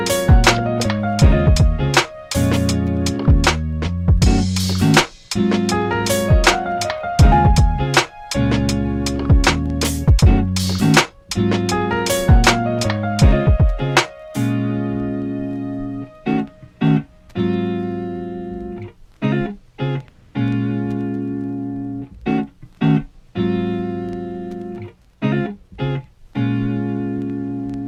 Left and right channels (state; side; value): identical; both; correlation 1.00